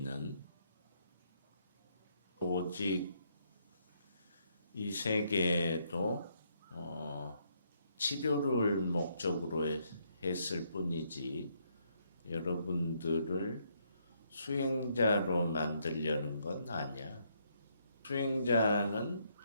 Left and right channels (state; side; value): inverted; both; correlation -0.74